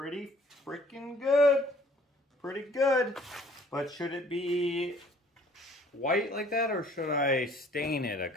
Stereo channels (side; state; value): both; normal; correlation 0.56